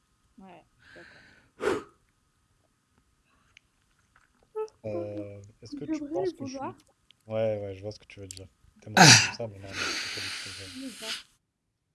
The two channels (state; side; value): identical; both; correlation 1.00